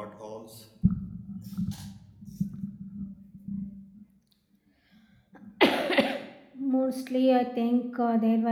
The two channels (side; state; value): both; identical; correlation 1.00